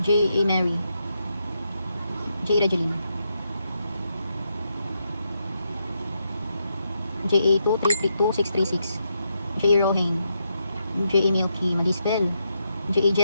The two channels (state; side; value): inverted; both; correlation -0.82